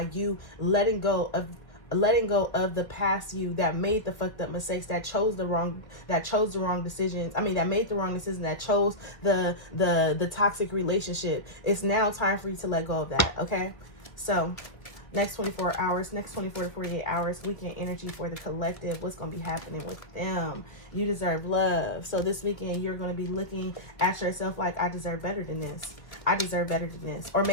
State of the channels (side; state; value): right; late; 1.4 ms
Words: you letting go of the past you that made the fucked up mistakes, that chose the wrong decisions. That made the wrong decision, that chose the toxic relationship. It's now time for you to let go of that. Okay. So next 24 to 48 hours, weekend energy for the collective. What's going to be happening with them? You deserve love. So this weekend, you're going to be looking at yourself like, I deserve better than this. I deserve better than this. Or